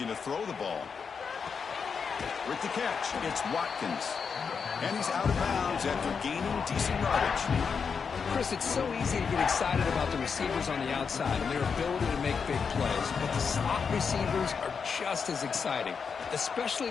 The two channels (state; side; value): quieter; right; 5.9 dB